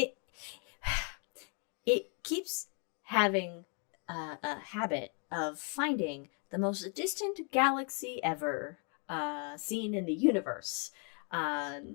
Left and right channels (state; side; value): quieter; right; 39.1 dB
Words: keeps having a habit of finding the most distant galaxy ever seen in the universe.